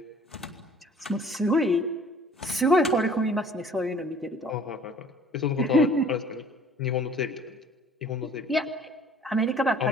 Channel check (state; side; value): normal; both; correlation 0.53